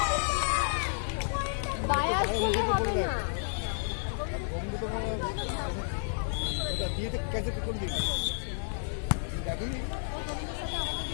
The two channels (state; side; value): silent; right; digital silence